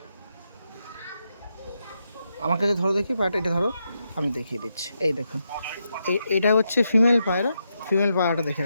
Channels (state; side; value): inverted; both; correlation -0.84